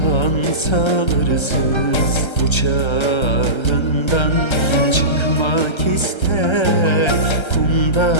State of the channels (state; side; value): late; right; 1.3 ms